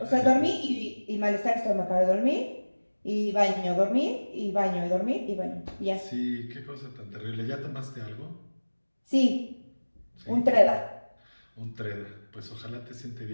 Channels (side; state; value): both; inverted; correlation -1.00